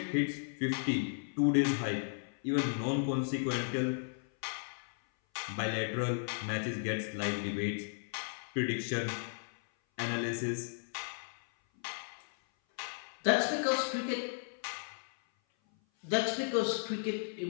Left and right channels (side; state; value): right; silent; 54 dB below the other